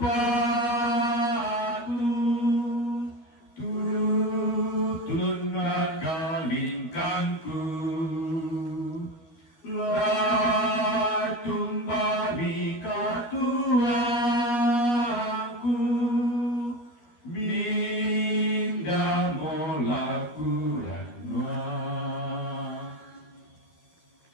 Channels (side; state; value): right; late; 12 ms